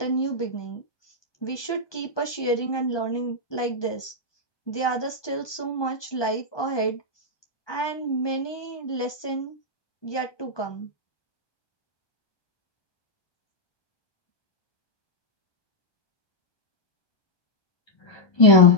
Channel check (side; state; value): right; late; 1.2 ms